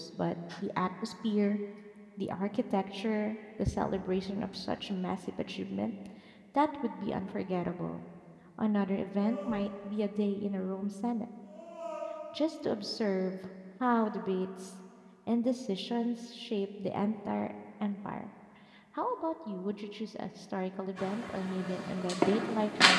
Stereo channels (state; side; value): identical; both; correlation 1.00